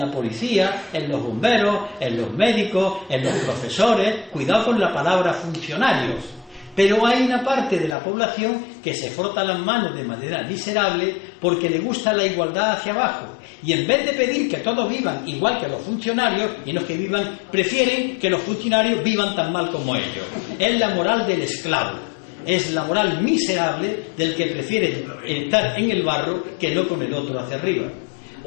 policía, en los bomberos, en los médicos, en los profesores. Cuidado con la palabra funcionarios. Pero hay una parte de la población que se frota las manos de manera miserable porque le gusta la igualdad hacia abajo. Y en vez de pedir que todos vivan igual que los funcionarios, y no que vivan, prefieren que los funcionarios vivan tan mal como ellos. Es la moral del esclavo. Es la moral miserable del que prefiere estar en el barro que no con el otro hacia arriba.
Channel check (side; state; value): right; drops out; at 8.0 s